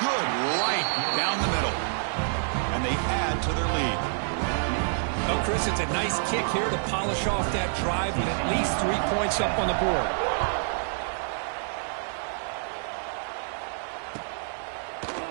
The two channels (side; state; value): left; silent; 56 dB below the other